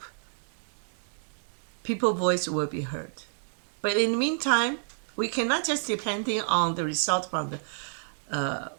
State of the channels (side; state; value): left; silent; digital silence